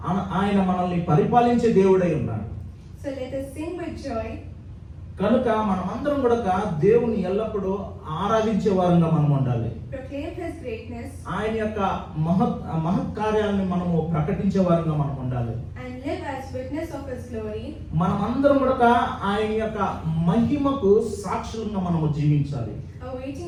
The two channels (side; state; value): both; identical; correlation 1.00